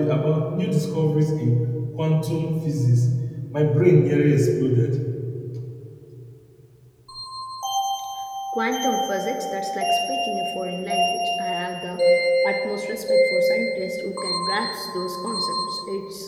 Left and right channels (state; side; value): identical; both; correlation 1.00